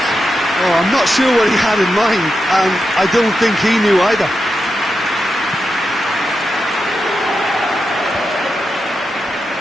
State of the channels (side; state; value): both; normal; correlation 0.88